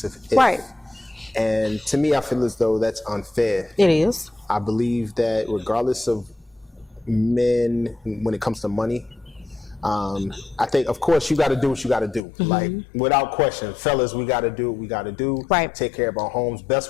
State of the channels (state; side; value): drops out; right; at 12.2 s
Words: if. And to me, I feel as though that's unfair. It is. I believe that regardless of men, when it comes to money, I think, of course, you got to do what you got to do. Like, without question, fellas, we got to do what we got to do. Take care of our homes